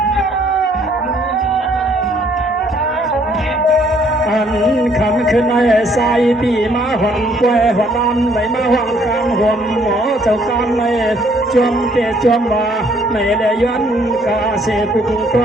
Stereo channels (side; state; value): both; normal; correlation 0.64